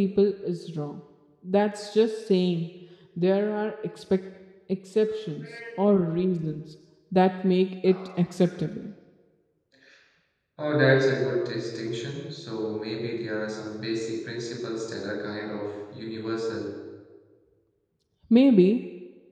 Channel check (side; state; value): both; identical; correlation 1.00